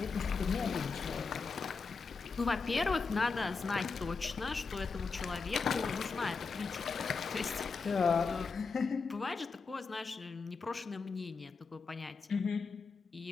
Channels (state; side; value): quieter; right; 4.7 dB